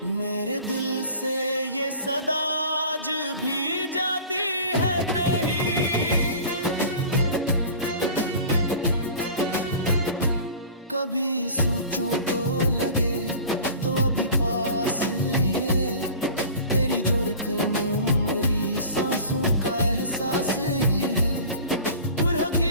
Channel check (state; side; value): inverted; both; correlation -0.40